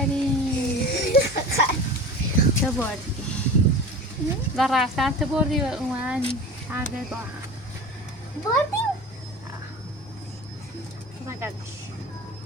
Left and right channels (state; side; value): normal; both; correlation 0.35